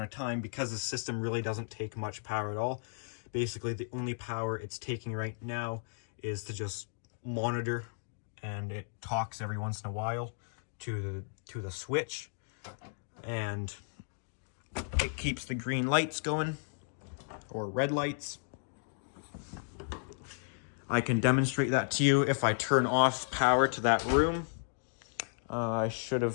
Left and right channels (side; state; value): right; silent; digital silence